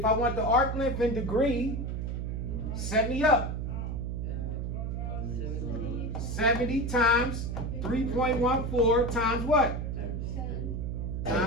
I want the arc length in degree, 70 up. 70 times 3.14 times what? 10.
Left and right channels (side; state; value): right; noise; hum, 3 dB below the sound